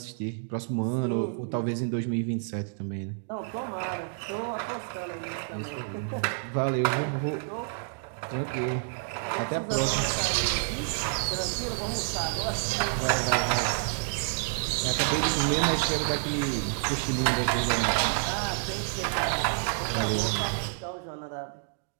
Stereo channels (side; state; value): left; silent; digital silence